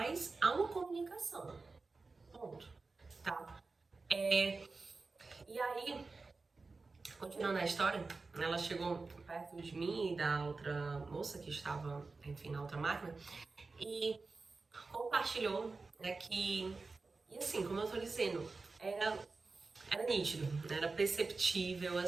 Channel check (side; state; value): left; quieter; 3.9 dB